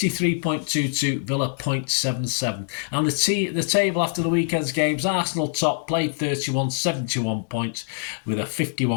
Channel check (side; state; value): right; silent; 63 dB below the other